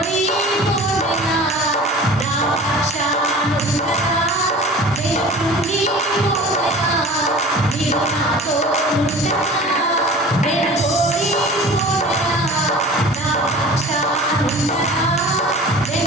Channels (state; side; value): normal; both; correlation 0.40